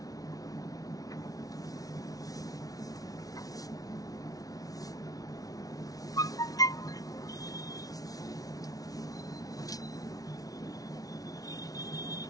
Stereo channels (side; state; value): right; late; 0.18 ms